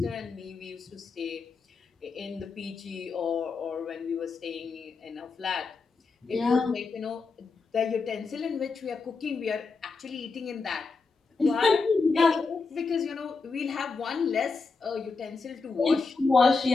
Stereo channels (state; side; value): quieter; right; 4.4 dB